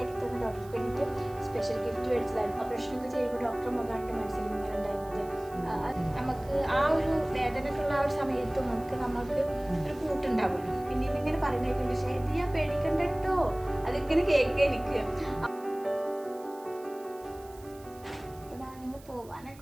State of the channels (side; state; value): right; noise; hiss, 24 dB below the sound